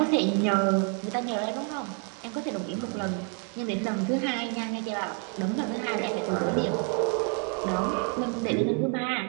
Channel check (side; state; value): left; quieter; 39.4 dB